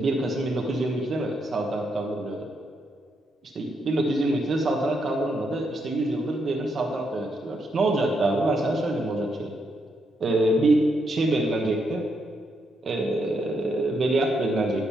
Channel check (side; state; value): both; normal; correlation 0.79